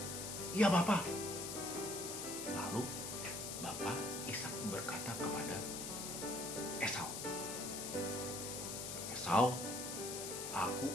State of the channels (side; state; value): left; noise; hiss, 5 dB below the sound